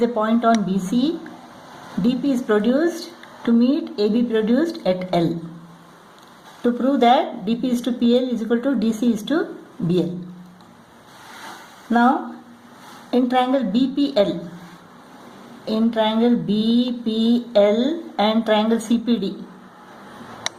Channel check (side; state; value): both; identical; correlation 1.00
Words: a point on BC. DP is produced to meet AB produced at L. To prove that DP is to PL is equal to DC is to BL. Now, in triangle BPL and triangle CPD,